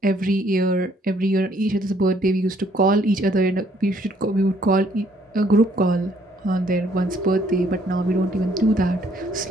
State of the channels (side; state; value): both; normal; correlation 0.65